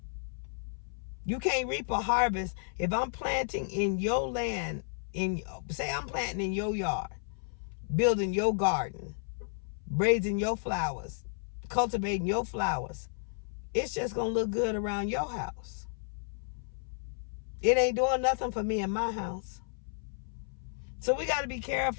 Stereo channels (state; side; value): silent; right; 55 dB below the other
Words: You can't reap a harvest. If I'm planting in your land, say I'm planting in your yard, building your garden, raising your flowers, cultivating your flowers, it's just going to look good around your house. It ain't doing nothing for me in my house. So we got to be